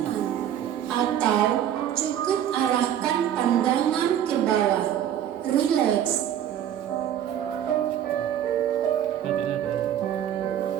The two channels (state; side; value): quieter; left; 10.4 dB